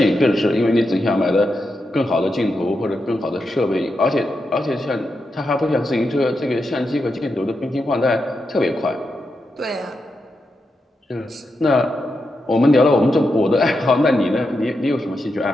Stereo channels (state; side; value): normal; both; correlation 0.86